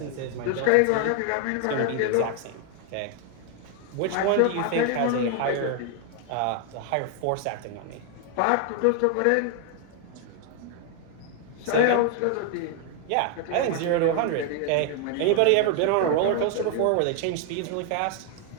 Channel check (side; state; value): both; different; correlation 0.00